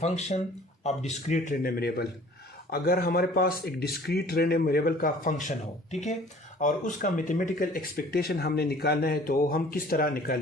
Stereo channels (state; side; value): normal; both; correlation 0.51